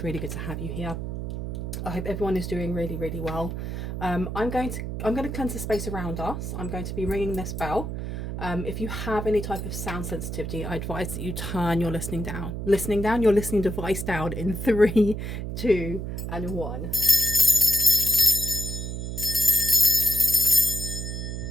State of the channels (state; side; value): noise; right; hum, 5 dB below the sound